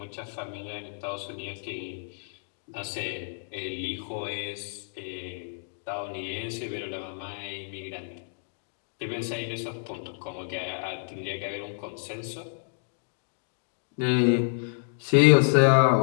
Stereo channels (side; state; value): right; silent; digital silence